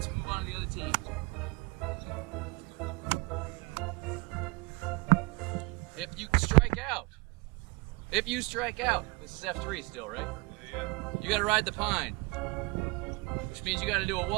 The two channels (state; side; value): quieter; left; 26.0 dB